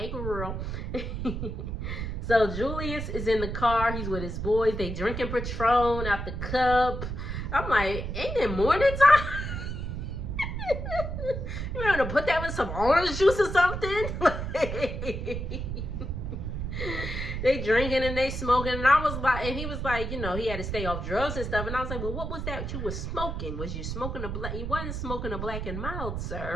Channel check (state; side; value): noise; right; rumble, 4 dB below the sound